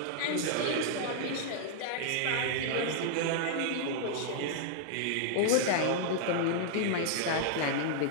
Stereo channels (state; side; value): different; both; correlation -0.01